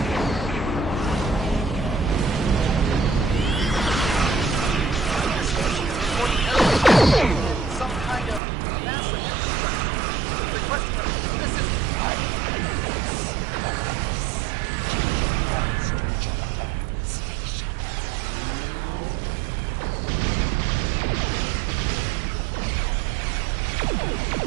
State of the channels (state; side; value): drops out; left; at 8.4 s